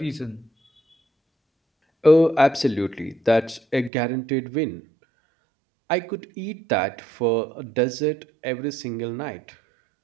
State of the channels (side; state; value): left; drops out; at 3.9 s